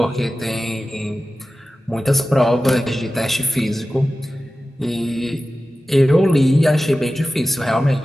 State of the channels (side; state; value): both; normal; correlation 0.94